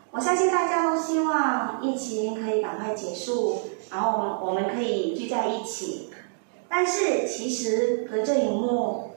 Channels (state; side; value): silent; left; digital silence